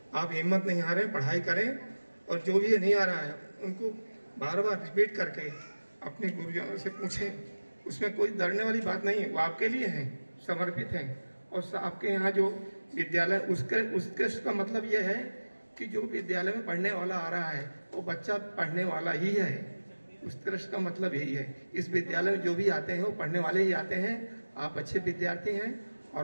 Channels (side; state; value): both; inverted; correlation -1.00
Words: आप हिम्मत नहीं हारें, पढ़ाई करें और जो भी नहीं आ रहा है उनको बार बार रिपीट करके अपने गुरुजनों से पूछें। उसमें कोई डरने वाली बात नहीं है, वो आपके लिए हैं, समर्पित हैं। और आपके यहाँ जो विद्यालय उसके का मतलब ये है कि जो विद्यालय में पढ़ने वाला आ रहा है वो बच्चा पढ़ने वाला ही है। उत्कृष्ट का मतलब यही है। इस विद्यालय में जो भी आते हैं वो पढ़ने वाले ही आते हैं। आप अच्छे विद्यार्थी हैं